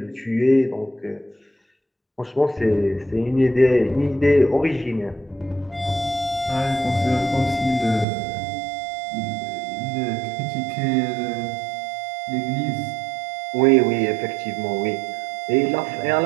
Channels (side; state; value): left; drops out; at 8.1 s